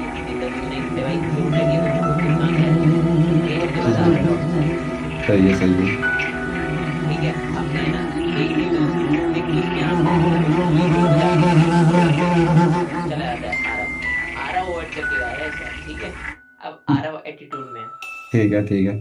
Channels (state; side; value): identical; both; correlation 1.00